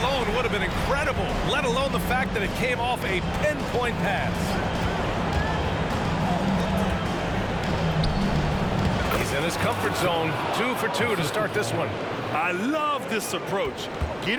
alone would have been incredible, let alone the fact that it came off a pinpoint pass. He's in his comfort zone, 2 for 2 to start this one. I love this approach.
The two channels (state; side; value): identical; both; correlation 1.00